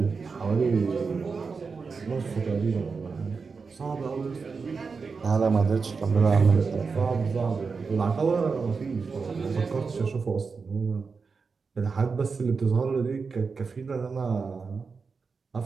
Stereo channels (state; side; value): quieter; left; 4.9 dB